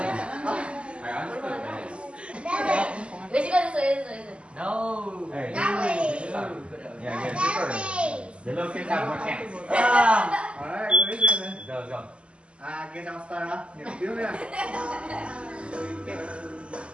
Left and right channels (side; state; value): left; late; 0.055 ms